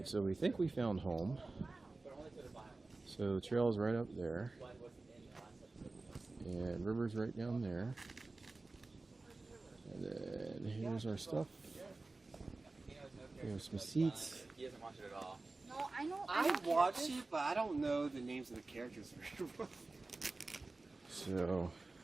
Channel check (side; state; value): left; quieter; 3.3 dB